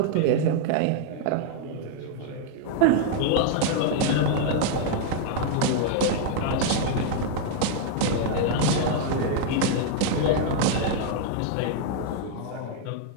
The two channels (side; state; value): both; different; correlation 0.00